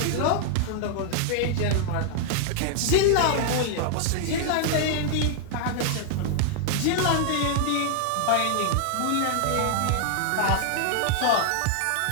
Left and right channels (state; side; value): different; both; correlation -0.01